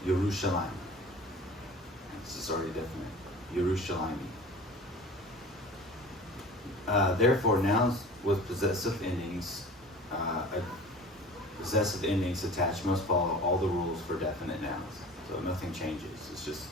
Yerushalayim. This is already definite. Yerushalayim. Therefore, nouns with possessive endings, attached must follow all the rules for definite nouns. So nothing changes. It's just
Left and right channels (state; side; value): normal; both; correlation 0.41